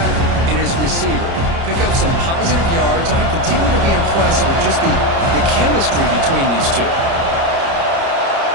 and his receiver. Pick up some positive yards, and I continue to be impressed with just the chemistry between these two.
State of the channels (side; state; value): left; late; 30 ms